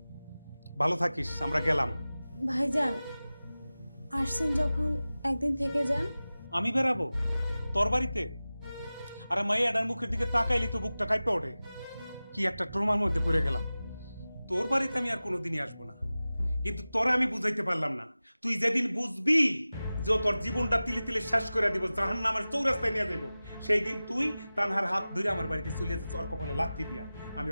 ভালো থাকিস, আমরা গেলাম। ভাইজান আসছেন যখন একদিন থেকে যান। আমি বেরাবো তোর বাড়িতে? আরে মাইয়াডার মুখের দিকে তাকাইলি তো বুকটা কাঁপে ওঠে। কি একটা ট্রমার মধ্যে পড়ে গেলাম। তোর বাড়িতে আমি আর কোনোদিনই আসবো না, কিন্তু তোরা আমি বুঝাইতে পারলাম না। তুই যেদিন বুঝবি যে তোর জীবনটা তিলে তিলে শেষ করে দিব, জাহান্নামের চৌরাস্তায় নিয়ে যাবো, সেই দিন তুই তানহার হাত ধরে আমার বাড়িতে চলে যাচ্ছে, ওর কপালে লাথি দিয়া। আমি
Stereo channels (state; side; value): inverted; both; correlation -0.97